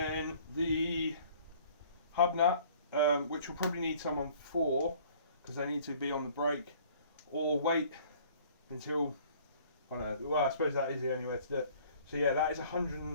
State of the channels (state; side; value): inverted; both; correlation -0.54